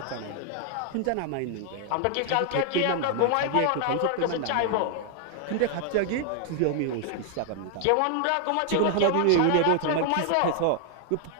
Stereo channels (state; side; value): different; both; correlation 0.00